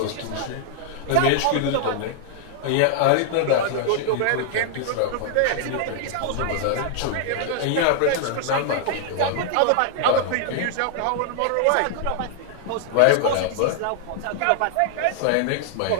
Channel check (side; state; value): both; different; correlation -0.01